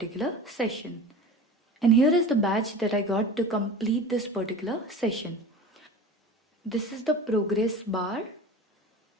session. And here is the badge that I got to complete this particular session. This is the progress bar,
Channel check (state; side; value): normal; both; correlation 0.35